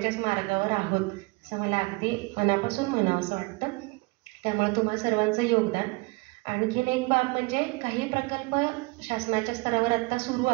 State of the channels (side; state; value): left; quieter; 26.7 dB